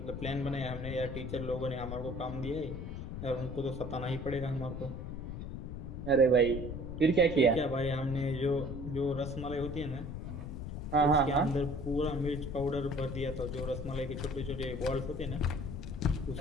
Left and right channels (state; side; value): noise; left; rumble, 7 dB below the sound